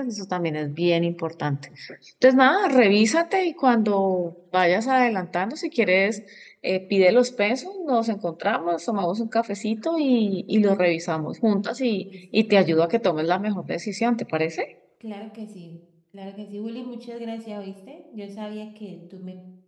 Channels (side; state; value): both; identical; correlation 1.00